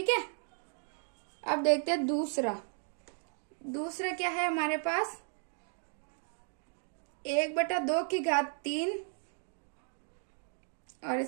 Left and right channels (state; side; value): silent; left; 54 dB below the other